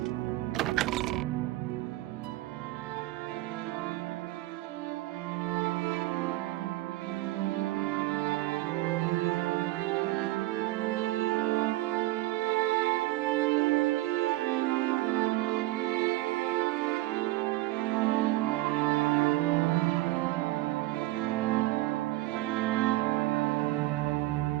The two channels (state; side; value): quieter; left; 18.5 dB